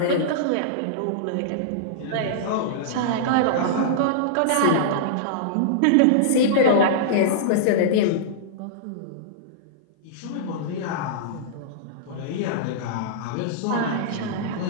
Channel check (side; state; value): both; different; correlation -0.02